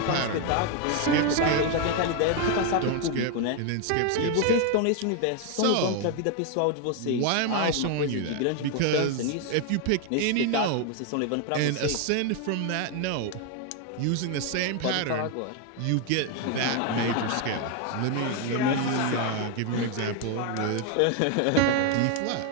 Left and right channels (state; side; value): different; both; correlation 0.01